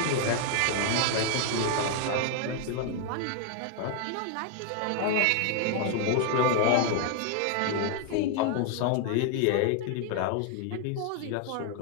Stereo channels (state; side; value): different; both; correlation 0.00